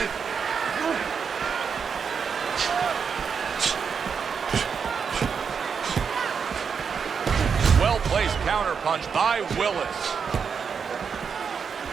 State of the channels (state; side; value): quieter; left; 6.3 dB